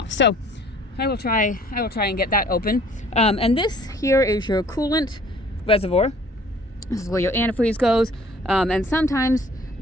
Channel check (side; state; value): both; normal; correlation 0.55